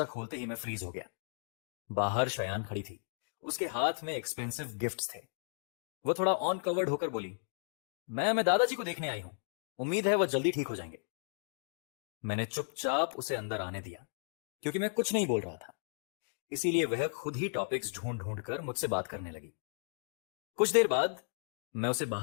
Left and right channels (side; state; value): right; silent; digital silence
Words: खोलते ही मैं फ्रीज हो गया। बाहर शयान खड़ी थी। उसके हाथ में एक्सपेंसिव गिफ्ट्स थे। वो थोड़ा ऑन कवर्ड होकर बोली, मैं दादाजी को देखने आई हूं, उम्मीद है वह जल्दी ठीक हो जाएंगे। मैंने चुपचाप उसे अंदर आने दिया, क्योंकि मैं कुछ नहीं बोल रहा था। इसीलिए वह खुद ही टॉपिक्स ढूंढ ढूंढ कर मुझसे बात करने लगी। कुछ देर बाद मैं उसे